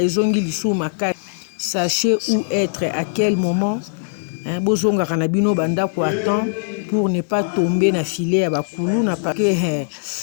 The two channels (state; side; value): silent; right; digital silence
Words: Sachez où être, à quel moment. Pour ne pas tomber dans le filet à Bakulu.